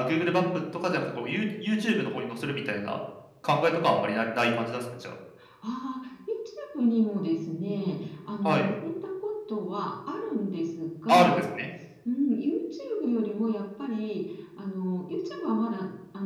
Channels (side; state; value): both; identical; correlation 1.00